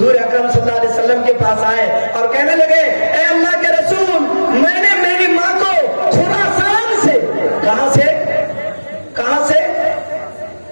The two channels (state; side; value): inverted; both; correlation -1.00